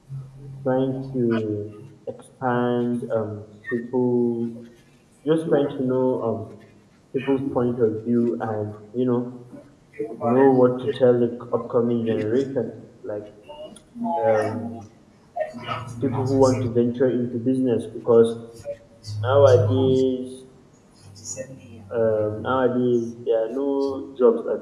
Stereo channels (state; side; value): identical; both; correlation 1.00